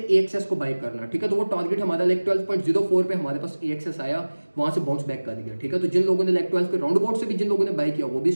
AXS को बाय करना, ठीक है, तो वो टारगेट हमारा लाइक 12.04 पे हमारे पास AXS आया, वहां से बाउंस बैक कर दिया, ठीक है। तो जिन लोगों ने लाइक 12 के राउंड अबाउट से भी जिन लोगों ने बाय किया वो भी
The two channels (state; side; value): inverted; both; correlation -1.00